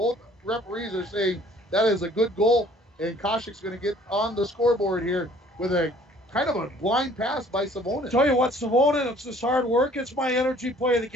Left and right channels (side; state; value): both; normal; correlation 0.55